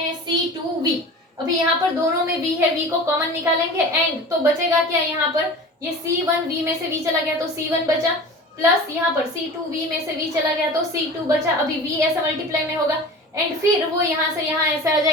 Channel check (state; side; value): normal; both; correlation 0.37